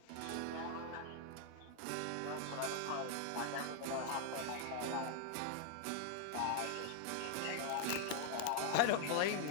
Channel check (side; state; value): both; different; correlation 0.00